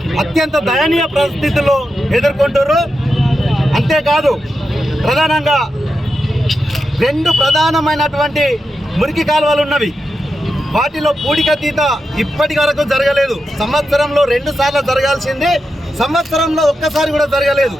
అత్యంత దయనీయ పరిస్థితుల్లో ఎదుర్కొంటారు. అంతేకాదు ప్రధానంగా 2 ప్రధానమైనటువంటి మురికి కాలువలు ఉన్నవి. వాటిలో పూడికతీత ఇప్పటి వరకు జరగలేదు. సంవత్సరంలో 2 సార్లు జరగాల్సింది సంవత్సరంలో ఒక్కసారి కూడా జరగలేదు.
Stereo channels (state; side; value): normal; both; correlation 0.88